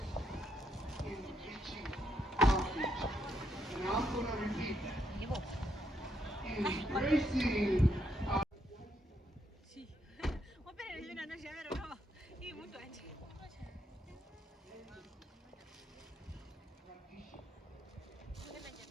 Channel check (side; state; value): both; normal; correlation 0.76